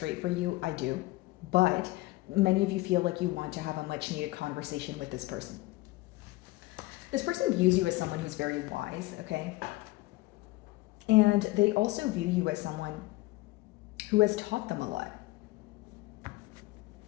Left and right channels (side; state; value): right; quieter; 20.1 dB